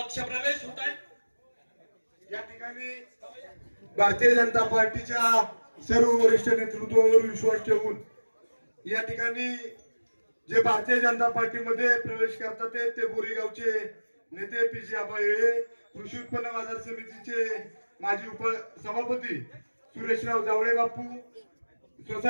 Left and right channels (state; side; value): inverted; both; correlation -1.00